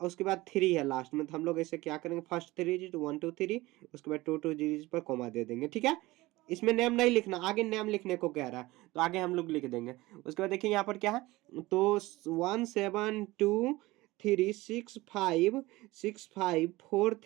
उसके बाद 3 है लास्ट में, तो हम लोग ऐसे क्या करेंगे, फर्स्ट थ्री डिजिट 1 2 3, उसके बाद टू डिजिट पर कॉमा दे देंगे, ठीक है। इसमें नेम नहीं लिखना, आगे नेम लिखने को कह रहा है, तो आगे हम लोग लिख देंगे। उसके बाद देखिए यहाँ पर क्या है, तो 1 7 2 3 6 5 6 5 4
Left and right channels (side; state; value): left; quieter; 19.7 dB